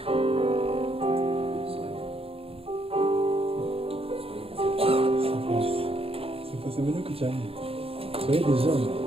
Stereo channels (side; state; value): left; late; 0.28 ms